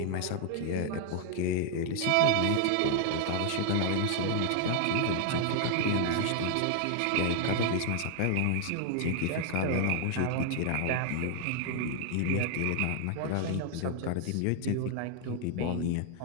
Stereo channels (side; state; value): both; different; correlation 0.00